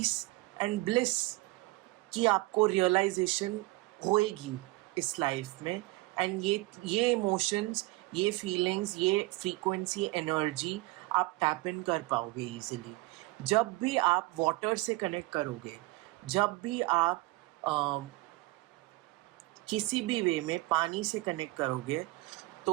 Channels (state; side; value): quieter; left; 21.4 dB